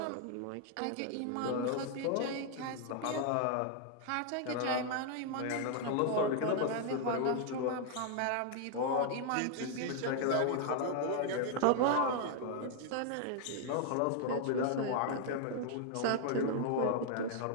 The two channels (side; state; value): both; different; correlation 0.00